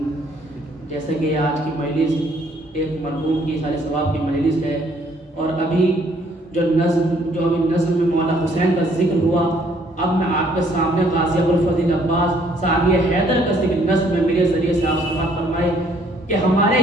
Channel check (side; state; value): both; normal; correlation 0.64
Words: جیسے کہ آج کی مجلس ایک مرحوم کی سال ثواب کی مجلس ہے اور ابھی جو ابھی نظم میں مولا حسین کا ذکر ہوا، اب میں آپ کے سامنے غازی ابوالفضل عباس ثانی حیدر کا ذکر نظم میں میرے ذریعے سے آپ سماعت فرمائے کہ ہمارے